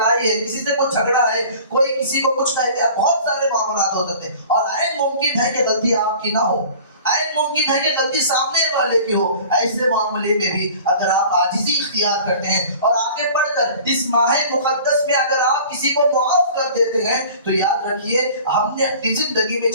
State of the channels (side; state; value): both; inverted; correlation -0.44